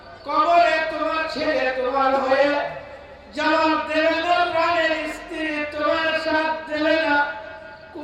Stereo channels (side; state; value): both; identical; correlation 1.00